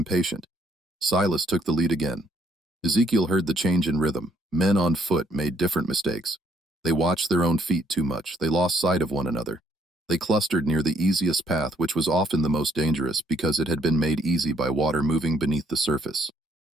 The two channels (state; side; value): normal; both; correlation 0.68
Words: Silas took the lead again. Ezekiel heard the change in rhythm. Men on foot made different mistakes. They watched their own feet too much. They lost sight of one another. They clustered near the easiest path, which was often the most dangerous because it had been made easy by water moving beneath the surface.